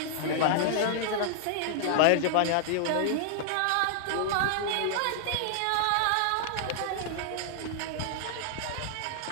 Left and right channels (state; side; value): different; both; correlation -0.01